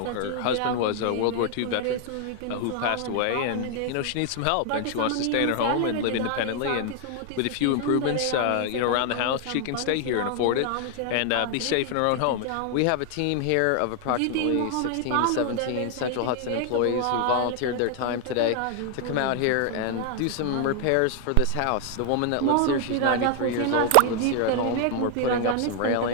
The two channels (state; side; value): different; both; correlation 0.00